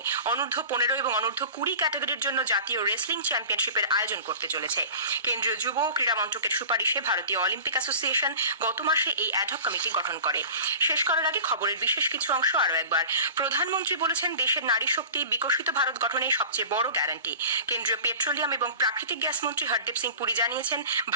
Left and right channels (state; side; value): inverted; both; correlation -0.37